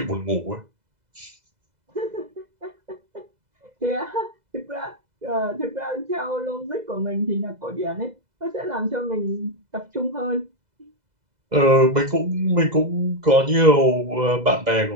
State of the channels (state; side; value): late; left; 2.0 ms